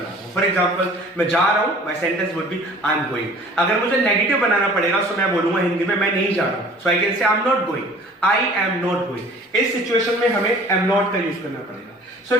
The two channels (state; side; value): normal; both; correlation 0.48